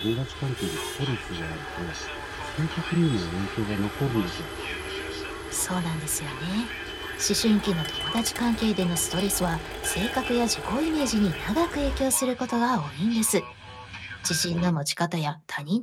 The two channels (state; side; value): identical; both; correlation 1.00